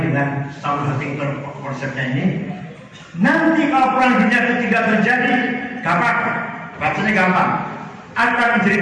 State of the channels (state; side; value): identical; both; correlation 1.00